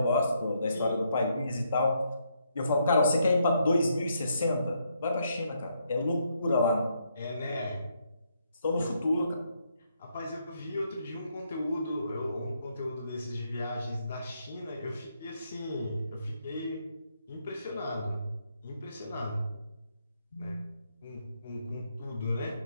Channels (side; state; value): both; inverted; correlation -0.76